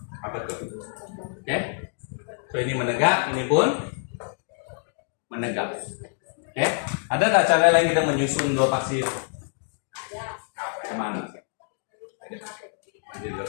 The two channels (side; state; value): right; silent; 61 dB below the other